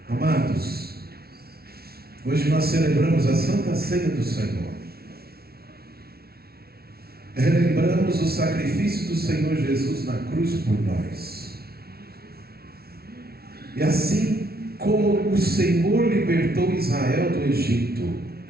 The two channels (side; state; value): left; late; 0.45 ms